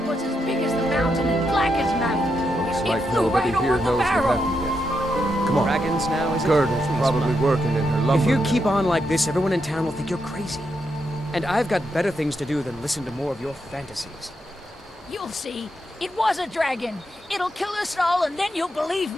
was as big as the mountain and black as night. Looks It like flew nobody right here over the knows what barrel. happened yet. Come on. Dragons now, is it? Gerda's Please, probably Mom. working in her lumber. If you mill. keep on like this, everyone in town will think you're crazy. And I've got better things to do than listen to more of your fantasies. You'll see. It was a dragon. It'll kill us all and then you'll believe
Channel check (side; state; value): both; normal; correlation 0.82